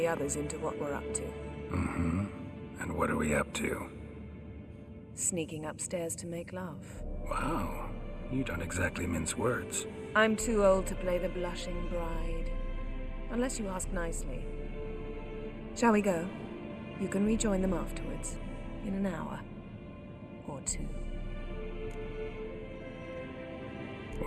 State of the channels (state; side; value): identical; both; correlation 1.00